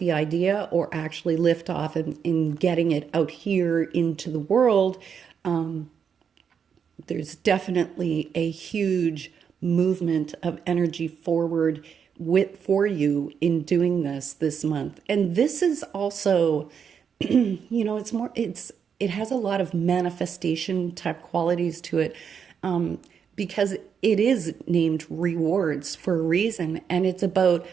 idea or actually liftoff in getting it out here into the world, there's definitely a huge movement of energy forward for you in doing this month. And this is also, it has a lot of manifestation type qualities to it. Because it is named rewards for a reason, and it's about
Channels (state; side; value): quieter; left; 7.1 dB